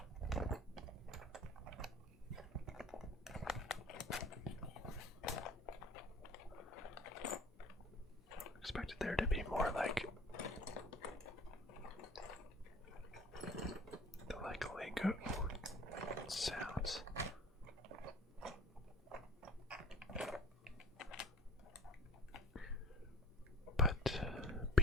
Expected there to be more like the Lego sounds. But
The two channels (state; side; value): normal; both; correlation 0.44